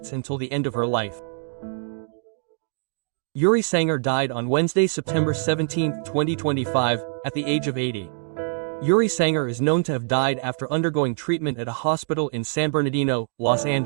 until the end of her life. Yuri Sanger died on Wednesday, September 17, 2025, at the age of 80. Yuri Sanger is known to have died after undergoing treatment at a hospital in San Bernardino, Los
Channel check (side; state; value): left; silent; digital silence